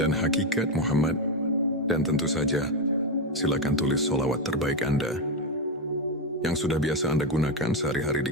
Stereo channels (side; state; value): both; normal; correlation 0.08